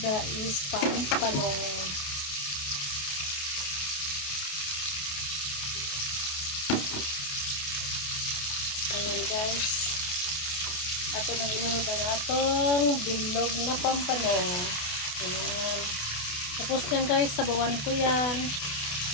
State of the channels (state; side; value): late; right; 28 ms